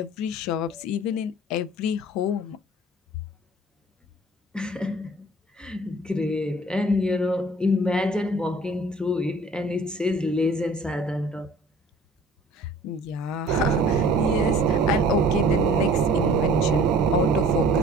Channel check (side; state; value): both; normal; correlation 0.49